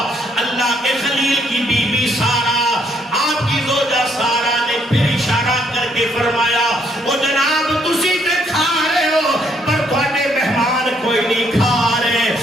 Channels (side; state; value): both; normal; correlation 0.70